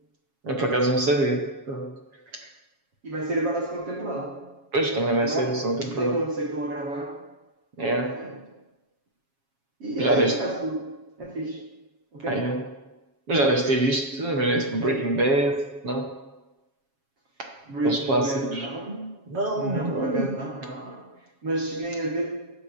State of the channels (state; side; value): late; left; 7.3 ms